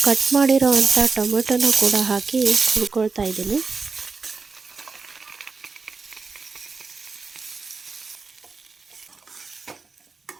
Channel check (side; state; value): left; quieter; 4.5 dB